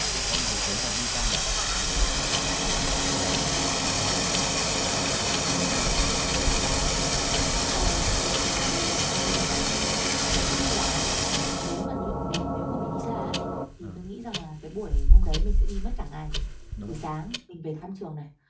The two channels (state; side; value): identical; both; correlation 1.00